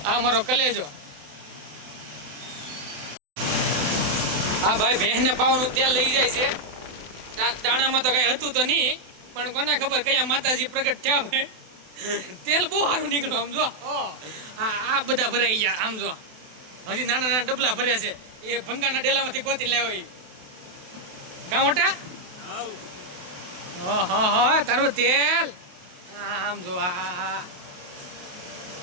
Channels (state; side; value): late; left; 28 ms